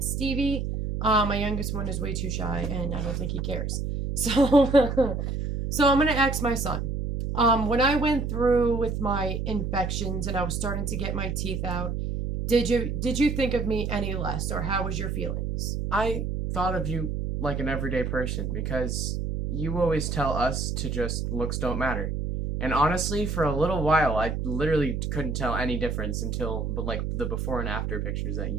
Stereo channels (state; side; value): noise; right; hum, 2 dB below the sound